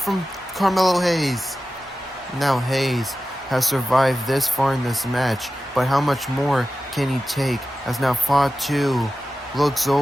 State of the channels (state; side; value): normal; both; correlation 0.94